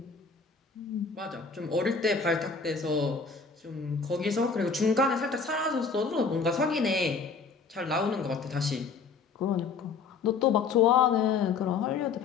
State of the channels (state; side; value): quieter; right; 5.1 dB